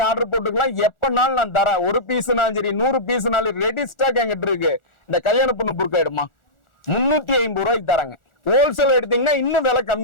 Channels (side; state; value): right; late; 1.4 ms